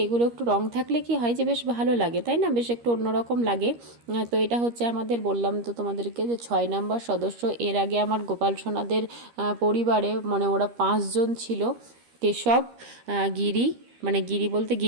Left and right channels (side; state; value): left; late; 13 ms